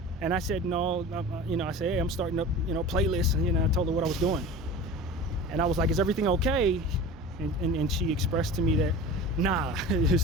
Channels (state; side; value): normal; both; correlation 0.36